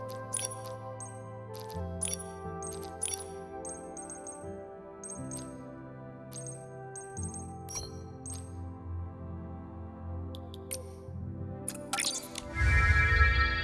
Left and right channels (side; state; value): both; identical; correlation 1.00